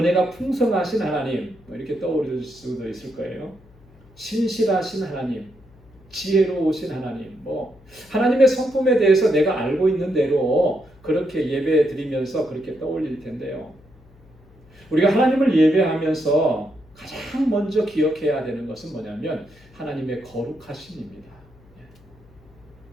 풍성하신 하나님, 이렇게 떠오를 수도 있을 거예요. 신실하신 하나님, 지혜로우신 하나님, 하나님의 성품에 대해서 내가 알고 있는 대로 그렇게 예배 드리면서 그렇게 떠올릴 텐데요. 우리가 하나님을 예배하면서 가장 먼저 기억해야 되는 것은 뭐냐면 하나님의 거룩하심입니다.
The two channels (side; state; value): left; noise; hum, 27 dB below the sound